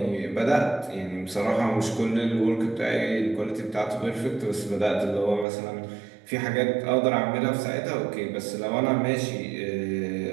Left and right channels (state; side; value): drops out; left; at 5.5 s